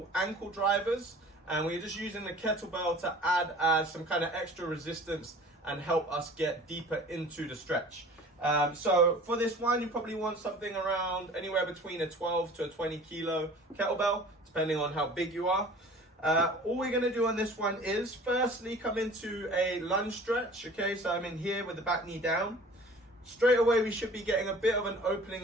ankle drivers, and we're just using the kettlebell to add as some kind of extra resistance and help us get deeper into the stretch. So for this one, you probably want something around anywhere between a 12 to a 20 kilo kettlebell, depending on how big you are. All we're going to do on this one is firstly come into a lunge stretch. Okay, so I'm in here with the back knee down. Straight away, we should be getting a bit of an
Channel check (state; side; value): normal; both; correlation 0.45